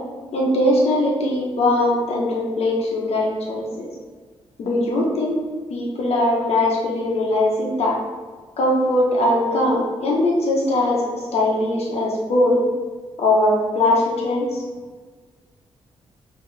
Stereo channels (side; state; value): both; normal; correlation 0.57